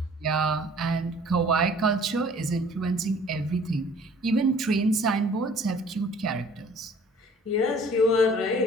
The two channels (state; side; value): normal; both; correlation 0.52